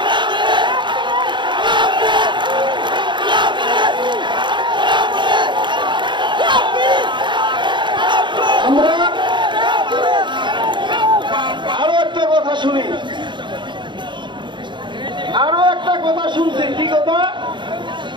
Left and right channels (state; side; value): late; left; 0.23 ms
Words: আমরা আরো একটা কথা শুনি, আরো একটা কথা শুনছি। কি কথা?